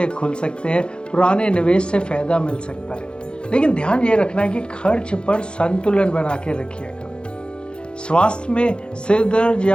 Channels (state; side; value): late; right; 0.053 ms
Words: खुल सकते हैं, पुराने निवेश से फायदा मिल सकता है, लेकिन ध्यान ये रखना है कि खर्च पर संतुलन बना के रखिएगा। स्वास्थ्य में सिर दर्द